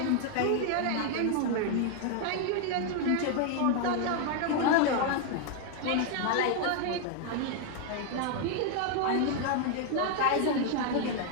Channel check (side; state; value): both; different; correlation 0.00